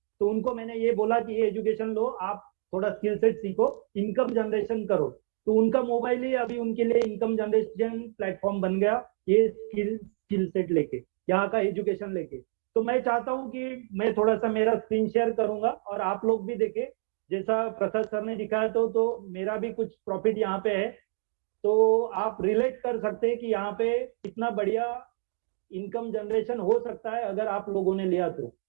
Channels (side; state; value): left; silent; 59 dB below the other